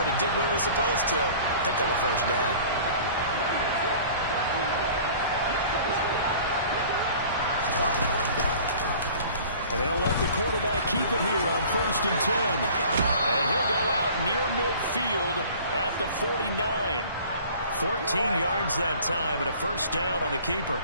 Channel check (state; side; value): inverted; both; correlation -0.47